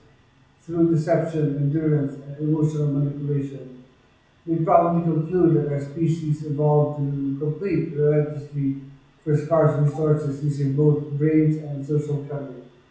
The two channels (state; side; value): identical; both; correlation 1.00